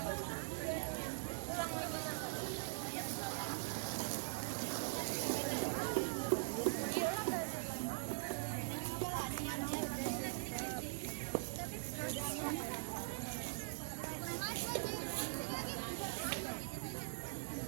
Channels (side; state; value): left; silent; digital silence